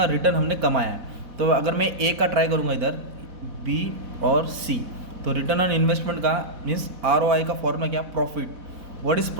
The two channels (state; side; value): late; left; 4.1 ms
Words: रिटर्न हमने कमाया है। तो अगर मैं ए का ट्राई करूँगा इधर, बी और सी, तो रिटर्न ऑन इन्वेस्टमेंट का मीन्स ROI का फॉर्मूला क्या, profit. What is